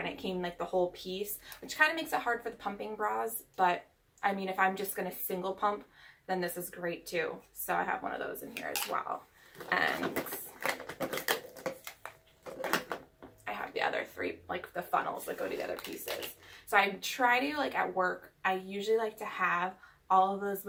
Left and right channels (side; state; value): both; identical; correlation 1.00